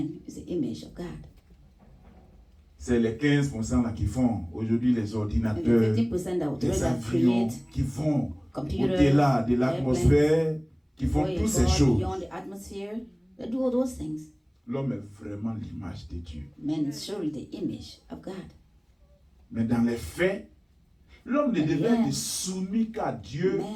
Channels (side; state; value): both; identical; correlation 1.00